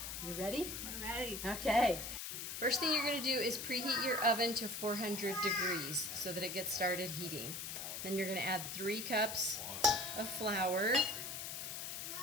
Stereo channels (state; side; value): noise; left; hiss, 6 dB below the sound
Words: you ready? We're ready. Okay. First thing you're going to do is preheat your oven to 400 degrees so that it gets started heating. Then you're going to add 3 cups of flour,